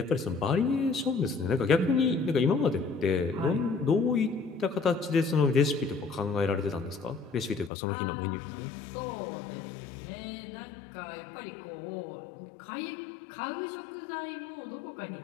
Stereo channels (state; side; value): drops out; right; at 7.7 s